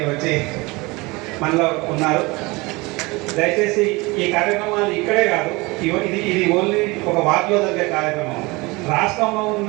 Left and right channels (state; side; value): quieter; left; 24.1 dB